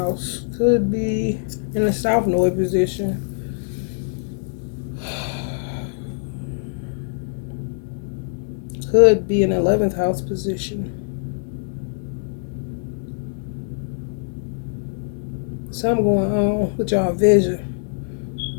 Could be in the South Node position. Could be in 11th house position. Something going on with y'all vision.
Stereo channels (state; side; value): silent; right; digital silence